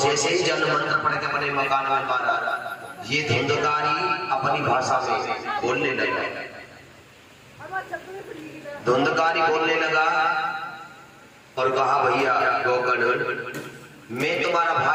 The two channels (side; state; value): both; identical; correlation 1.00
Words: ही जल मंत्र पड़ के अपने मकान में मारा, ये धुंधकारी अपनी भाषा में बोलने लगा। धुंधकारी बोलने लगा और कहा, भैया गोकर्ण मैं तुम्हारा